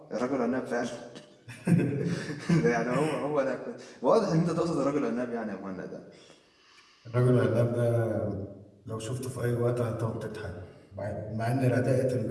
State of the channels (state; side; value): identical; both; correlation 1.00